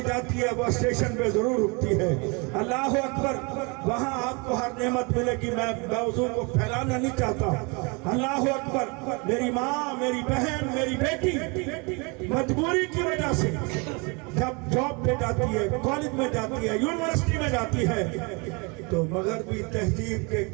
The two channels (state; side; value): quieter; left; 30.4 dB